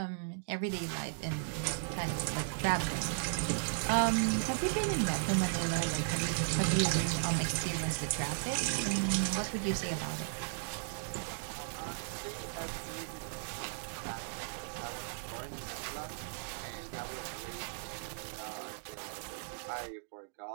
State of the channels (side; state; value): left; silent; digital silence